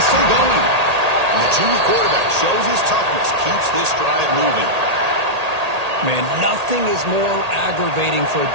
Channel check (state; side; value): late; left; 1.8 ms